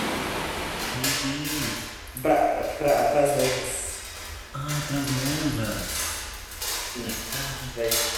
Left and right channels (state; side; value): identical; both; correlation 1.00